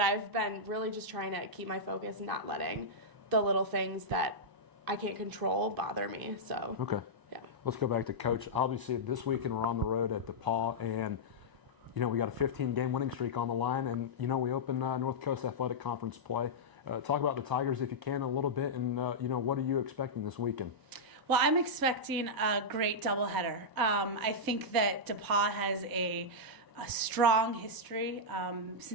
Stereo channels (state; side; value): late; left; 1.0 ms